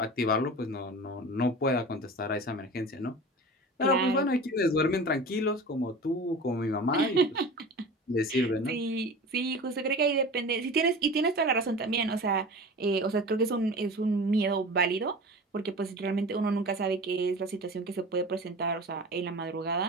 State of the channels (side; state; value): both; normal; correlation 0.35